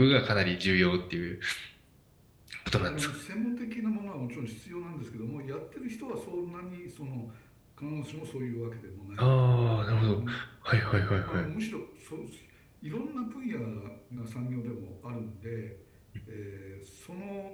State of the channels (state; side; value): identical; both; correlation 1.00